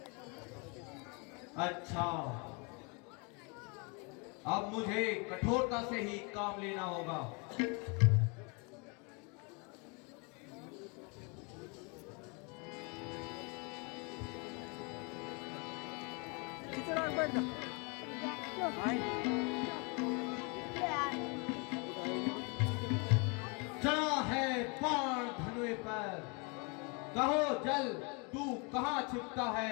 अच्छा, अब मुझे कठोरता से ही काम लेना होगा। चढ़ा है बाण धनुए पर, कहो जल तू कहाँ छिपता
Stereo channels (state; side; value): quieter; right; 32.2 dB